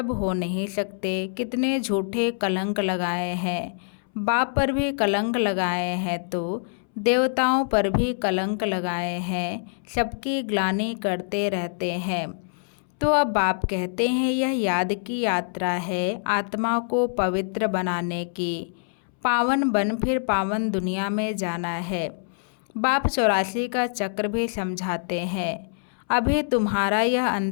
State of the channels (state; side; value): silent; right; 62 dB below the other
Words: हो नहीं सकते। कितने झूठे कलंक लगाए हैं। बाप पर भी कलंक लगाए हैं तो देवताओं पर भी कलंक लगाए हैं। सबकी ग्लानि करते रहते हैं। तो अब बाप कहते हैं यह याद की यात्रा है आत्मा को पवित्र बनाने की। पावन बन फिर पावन दुनिया में जाना है। बाप 84 का चक्र भी समझाते हैं। अभी तुम्हारा यह